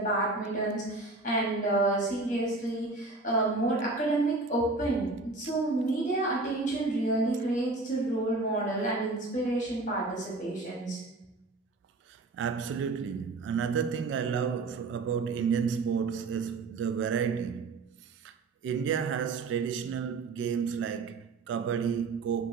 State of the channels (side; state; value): left; quieter; 3.5 dB